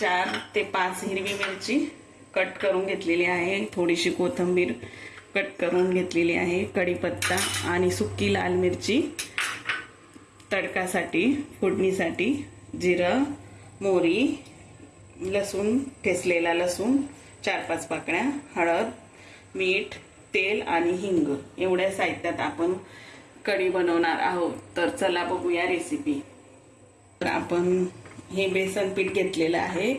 ते 5 हिरवी मिरची कट करून घेतलेली आहे, थोडीशी कोथिंबीर कट करून घेतलेली आहे, कढीपत्ता आणि सुकी लाल मिरची तडकासाठी फोडणीसाठी, जिरं, मोहरी, लसूण ठेचलेला लसूण 4-5 पाकळ्या, हळद, मीठ, तेल आणि हिंग एवढ्या साहित्यात आपण कढी बनवणार आहोत। तर चला बघूया रेसिपी। तर आपण हे बेसन पीठ घेतलेलं आहे,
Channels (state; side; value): identical; both; correlation 1.00